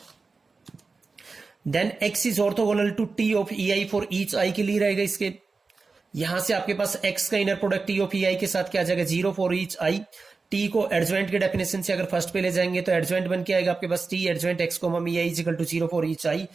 Then x is orthogonal to T of E i for each i के लिए रहेगा इसके। यहां से आपके पास x का inner product T of E i के साथ क्या आ जाएगा 0 फॉर ईच आई, टी को एडजॉइंट के डेफिनेशन से अगर फर्स्ट पे ले जाएंगे तो एडजॉइंट बन के आएगा आपके पास टी एडजॉइंट एक्स कोमा मी i equal to 0 for each i,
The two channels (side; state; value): left; quieter; 4.2 dB